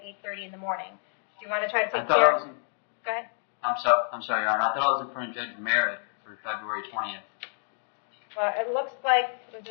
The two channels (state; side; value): silent; right; 56 dB below the other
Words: 8:30 in the morning. Do you want to try to take I thought care? I was in, Go ahead. I'm sorry, Your Honor. I thought I was in front of Judge Merritt for February 20th. Well, it looks like was